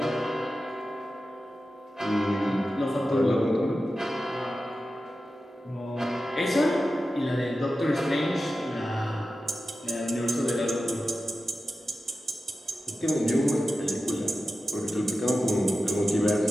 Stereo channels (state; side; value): normal; both; correlation 0.93